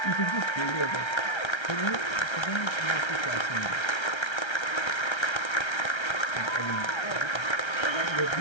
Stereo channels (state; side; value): late; right; 1.3 ms